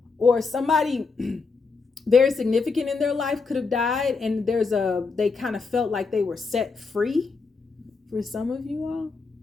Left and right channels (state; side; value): quieter; right; 4.5 dB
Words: or somebody very significant in their life could have died, and they kind of felt like they were set free for some of you all.